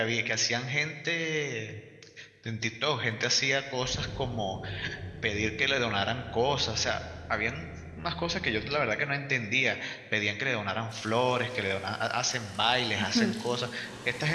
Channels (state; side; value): identical; both; correlation 1.00